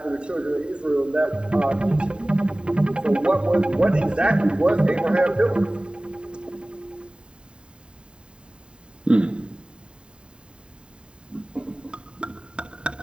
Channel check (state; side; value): late; left; 0.051 ms